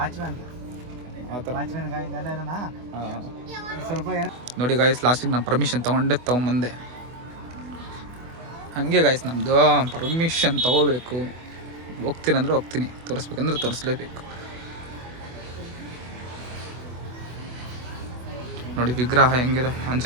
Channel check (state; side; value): late; left; 24 ms